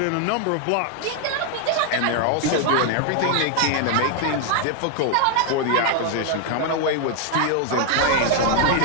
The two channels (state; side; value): different; both; correlation 0.00